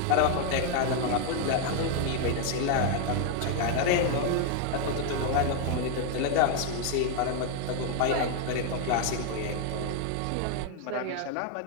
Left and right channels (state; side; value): different; both; correlation 0.00